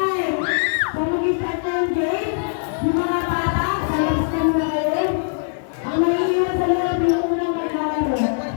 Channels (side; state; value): right; silent; digital silence